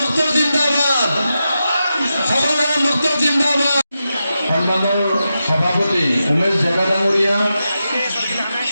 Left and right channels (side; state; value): both; inverted; correlation -0.89